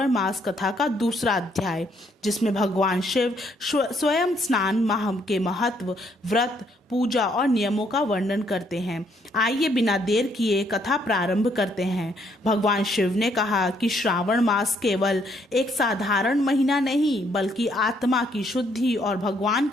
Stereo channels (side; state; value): both; normal; correlation 0.69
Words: मास कथा का दूसरा अध्याय, जिसमें भगवान शिव स्वयं स्नान माह के महत्व, व्रत, पूजा और नियमों का वर्णन करते हैं। आइए बिना देर किए कथा प्रारंभ करते हैं। भगवान शिव ने कहा कि श्रावण मास केवल एक साधारण महीना नहीं, बल्कि आत्मा की शुद्धि और भगवान